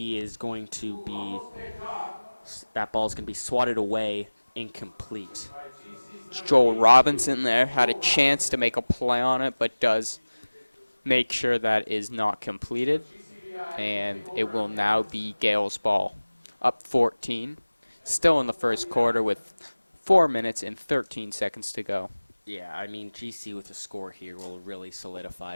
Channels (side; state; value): both; inverted; correlation -1.00